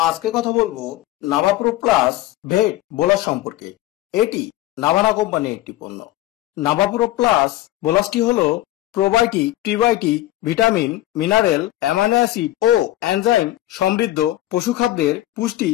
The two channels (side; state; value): right; quieter; 15.4 dB